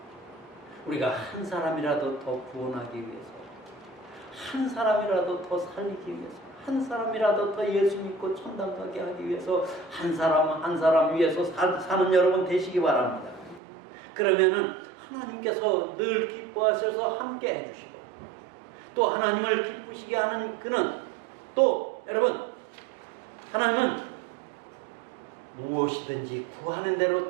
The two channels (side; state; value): left; drops out; at 13.6 s